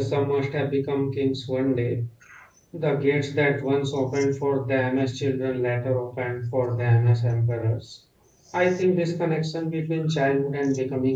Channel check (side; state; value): both; identical; correlation 1.00